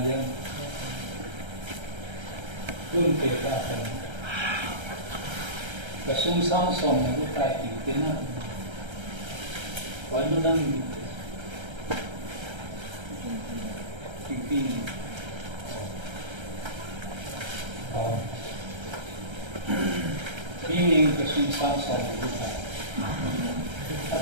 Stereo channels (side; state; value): left; late; 1.3 ms